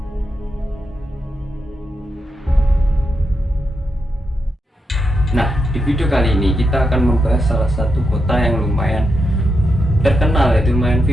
Nah, di video kali ini kita akan membahas salah satu kota yang lumayan terkenal, yaitu lumayan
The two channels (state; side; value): normal; both; correlation 0.84